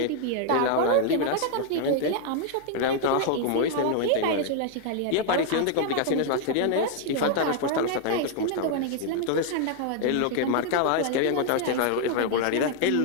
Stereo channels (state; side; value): different; both; correlation 0.00